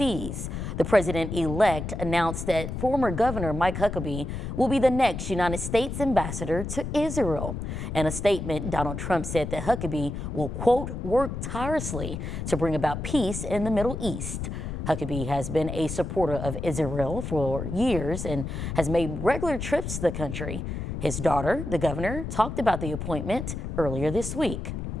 The president-elect announced that former Governor Mike Huckabee will be the next United States ambassador to Israel. In a statement, Donald Trump said that Huckabee will, quote, work tirelessly to bring about peace in the Middle East. Huckabee has been a supporter of Israel for years and has made regular trips to the country. His daughter, the governor, talked about the appointment earlier this week.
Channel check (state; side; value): noise; left; rumble, 5 dB below the sound